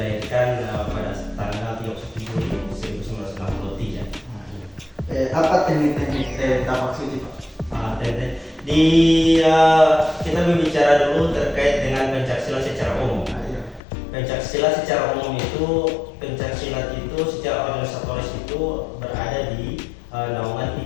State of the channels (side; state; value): right; drops out; at 13.8 s